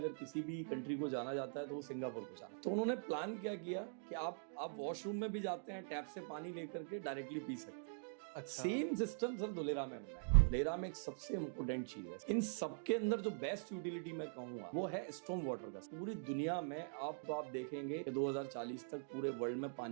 किसी भी कंट्री को जाना जाता है तो वो सिंगापुर को जाना। तो उन्होंने प्लान क्या किया कि आप वॉशरूम में भी जाते हैं, टैप से पानी लेकर के डायरेक्टली पी सकते हैं। अच्छा। सेम सिस्टम सर धोलेरा में बना है। धोलेरा में एक सबसे इम्पोर्टेंट चीज है, इन सबके अंदर जो बेस्ट यूटिलिटी मैं कहूंगा वो है स्टॉर्म वाटर का। पूरी दुनिया में आप देखेंगे कि 2040 तक पूरे वर्ल्ड में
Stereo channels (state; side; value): silent; left; digital silence